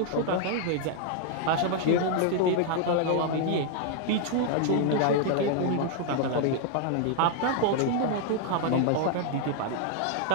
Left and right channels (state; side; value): different; both; correlation 0.00